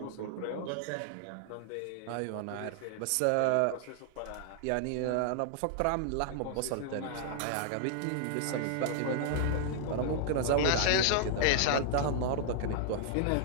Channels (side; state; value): both; different; correlation -0.01